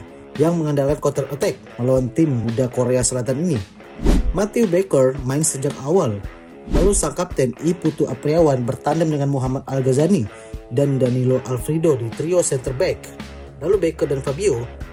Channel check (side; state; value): both; identical; correlation 1.00